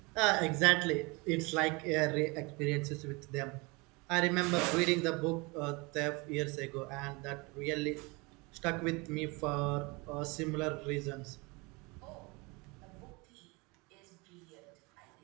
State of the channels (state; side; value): quieter; left; 26.8 dB